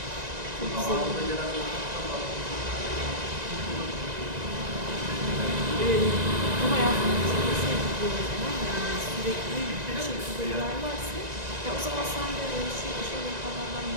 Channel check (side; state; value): left; late; 1.9 ms